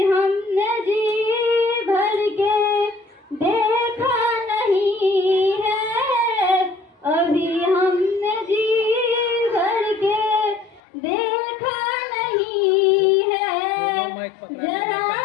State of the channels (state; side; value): drops out; right; at 10.8 s